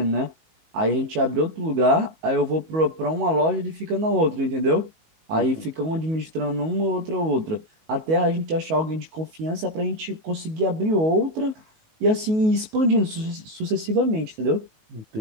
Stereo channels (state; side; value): late; left; 19 ms